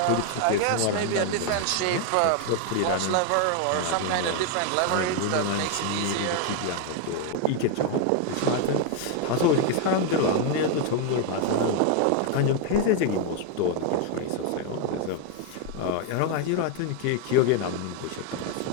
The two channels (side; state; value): both; different; correlation 0.01